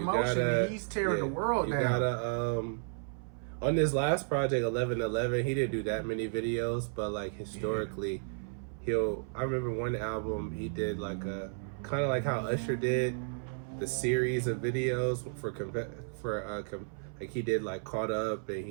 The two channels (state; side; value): silent; left; 56 dB below the other